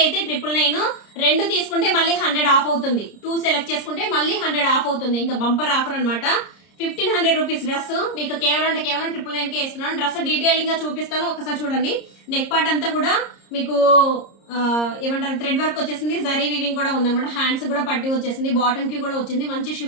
అయితే 999, 2 తీసుకుంటే మళ్ళీ 100 ఆఫ్ అవుతుంది. 2 సెలెక్ట్ చేసుకుంటే మళ్ళీ 100 ఆఫ్ అవుతుంది. ఇంకా బంపర్ ఆఫర్ అనమాట. 1500 రూపీస్ డ్రెస్ మీకు కేవలం 999 కే ఇస్తున్నాను. డ్రెస్ డీటెయిలింగ్ గా చూపిస్తాను, ఒకసారి చూడండి. నెక్ పార్ట్ అంతా కూడా మీకు ఏమంటారు థ్రెడ్ వర్క్ వచ్చేసింది, జరీ వీవింగ్ కూడా ఉందన్నమాట. హ్యాండ్స్ కూడా పట్టి వచ్చేసింది, బాటమ్ కి కూడా వచ్చింది. మంచి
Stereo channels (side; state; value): right; late; 30 ms